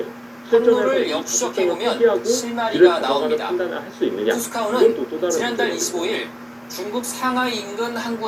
항로를 역추적해보면 실마리가 나옵니다. 투스카오는 지난달 25일 중국 상하이 인근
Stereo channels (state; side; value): identical; both; correlation 1.00